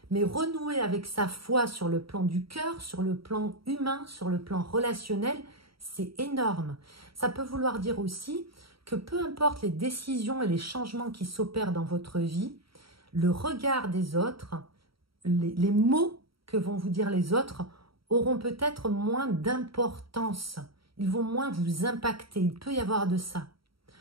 Mais renouer avec sa foi sur le plan du cœur, sur le plan humain, sur le plan relationnel, c'est énorme. Ça peut vouloir dire aussi que peu importe les décisions et les changements qui s'opèrent dans votre vie, le regard des autres, les mots que vont vous dire les autres auront peut-être moins d'importance. Ils vont moins vous impacter. Il peut y avoir de ça.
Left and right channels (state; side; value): late; left; 0.75 ms